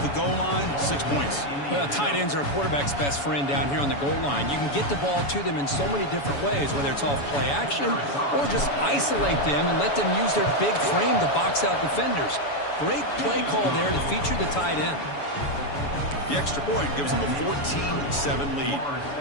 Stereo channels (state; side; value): late; right; 7.0 ms